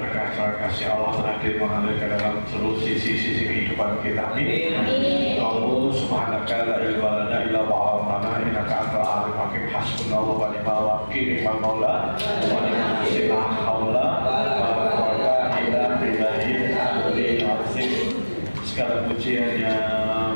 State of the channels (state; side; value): inverted; both; correlation -1.00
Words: kasih Allah hadir mengalir ke dalam seluruh sisi-sisi kehidupan kita. Amin. Allah subhanaka la ilma lana illa ma 'allamtana innaka antal alimul hakim. Hasbunallahu wa ni'mal wakil, ni'mal maula wa ni'mal nasir. La haula wa la quwwata illa billahil aliyyil azim. Segala puji hanya